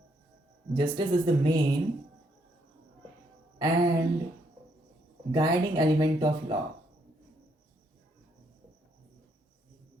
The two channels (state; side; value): normal; both; correlation 0.73